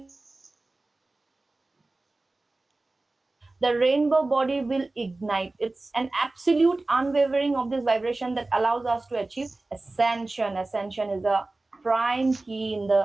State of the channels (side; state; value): left; quieter; 3.1 dB